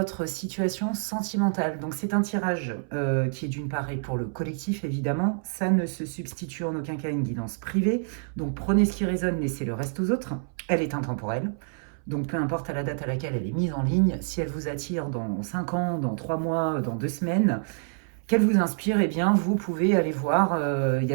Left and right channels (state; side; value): silent; left; 60 dB below the other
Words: situation sentimentale. Donc c'est un tirage qui est d'une part et pour le collectif évidemment, ça ne se substitue en aucun cas à une guidance privée. Donc prenez ce qui résonne, laissez le reste aux autres. Elle est intemporelle. Donc peu importe à la date à laquelle elle est mise en ligne, si elle vous attire dans 5 ans, dans 3 mois, dans 2 semaines, qu'elle vous inspire, eh bien vous pouvez aller voir, il y